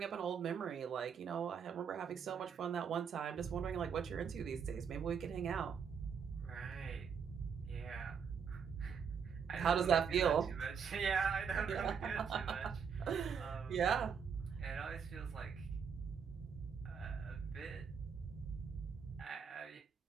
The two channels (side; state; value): left; quieter; 6.7 dB